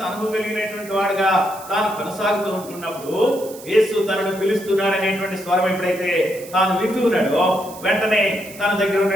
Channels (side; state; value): right; noise; hiss, 17 dB below the sound